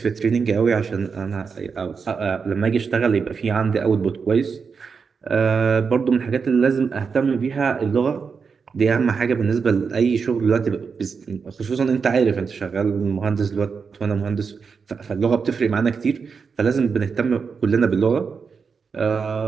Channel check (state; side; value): quieter; left; 5.6 dB